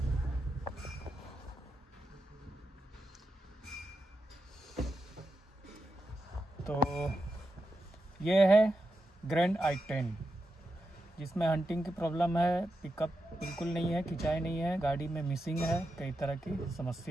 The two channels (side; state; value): both; normal; correlation 0.87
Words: तो ये है ग्रैंड i10, जिसमें हंटिंग की प्रॉब्लम है, पिकअप बिल्कुल नहीं है, खिंचाई नहीं है, गाड़ी में मिसिंग है, कई तरह की